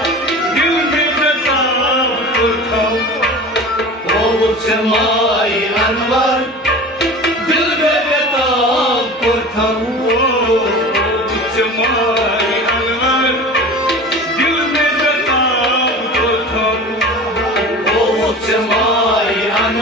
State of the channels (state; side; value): normal; both; correlation 0.35